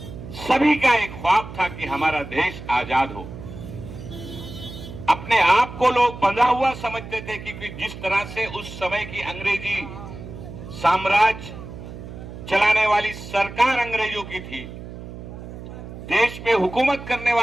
सभी का एक ख्वाब था कि हमारा देश आजाद हो। अपने आप को लोग बंधा हुआ समझते थे, क्योंकि जिस तरह से उस समय की अंग्रेजी साम्राज्य चलाने वाली सरकार अंग्रेजों की थी, देश पे हुकूमत करने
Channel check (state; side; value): noise; right; hum, 12 dB below the sound